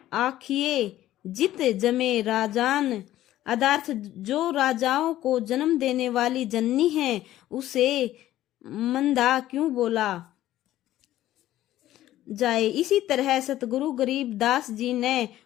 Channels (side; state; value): right; quieter; 13.8 dB